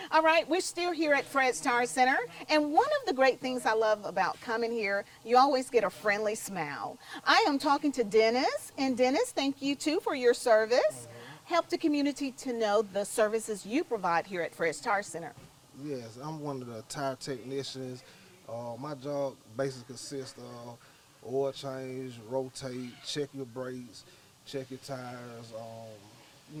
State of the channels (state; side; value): identical; both; correlation 1.00